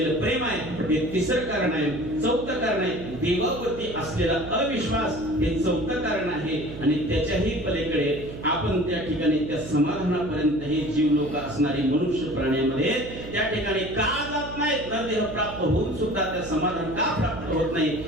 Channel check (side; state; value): right; noise; hum, 11 dB below the sound